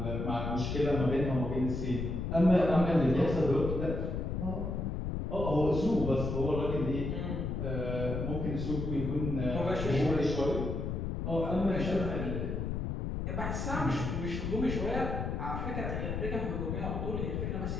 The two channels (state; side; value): noise; left; rumble, 2 dB below the sound